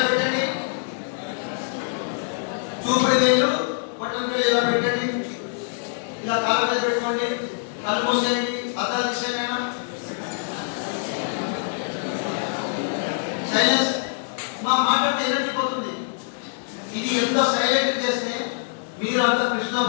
పెట్టండి. చూపుడు వేలు బొట్టం వేలు ఇలా పెట్టండి. ఇలా కాళ్ళ మీద పెట్టుకోండి. కళ్ళు మూసేయండి. అద్దాలు తీసేయమైనా సైలెన్స్. మా మాట్లాడితే ఎనర్జీ పోతుంది. ఇది ఎంతో సైలెంట్ చేస్తే మీరు అంత కృష్ణ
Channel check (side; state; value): right; silent; digital silence